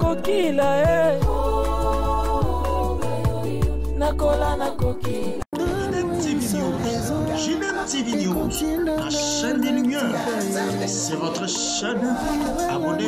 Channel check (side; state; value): both; identical; correlation 1.00